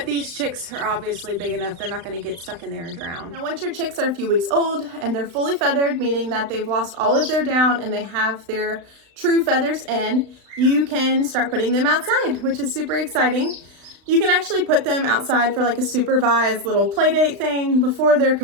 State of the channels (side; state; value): left; late; 35 ms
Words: these chicks are obviously big enough, they're not gonna get stuck in there and drown. Now once your chicks are a few weeks old and they're fully feathered, meaning that they've lost all of their down and they have their true feathers in, you can start putting them outside, which is super exciting. You can actually put them outside for like a supervised little play date thing before they're